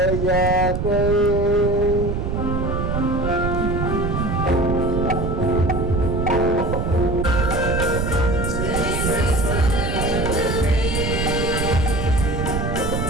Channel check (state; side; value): noise; right; rumble, 1 dB below the sound